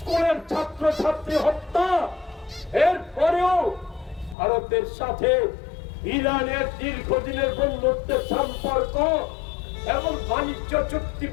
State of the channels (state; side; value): drops out; right; at 4.4 s